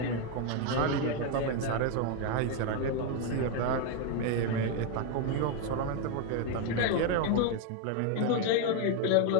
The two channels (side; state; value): both; different; correlation 0.01